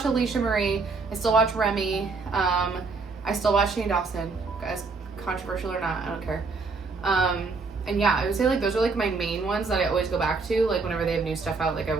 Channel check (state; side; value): quieter; left; 4.2 dB